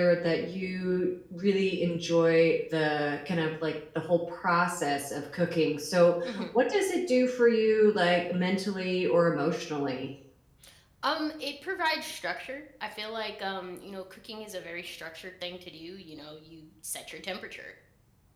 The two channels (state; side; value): identical; both; correlation 1.00